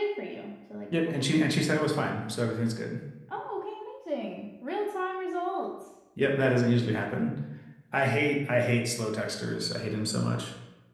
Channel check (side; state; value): both; identical; correlation 1.00